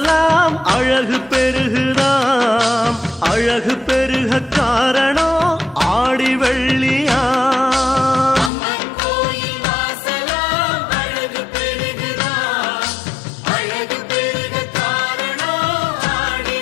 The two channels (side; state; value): right; drops out; at 8.5 s